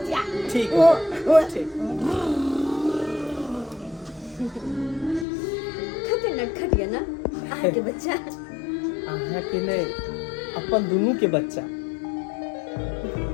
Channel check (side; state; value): right; drops out; at 5.2 s